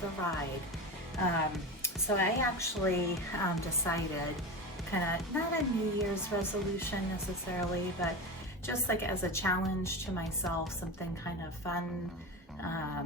ride. So I actually decided, kind of not a New Year's resolution necessarily, but just like as a challenge to myself, something kind of fun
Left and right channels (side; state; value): both; normal; correlation 0.24